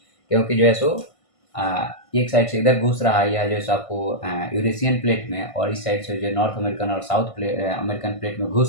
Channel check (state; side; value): late; right; 1.5 ms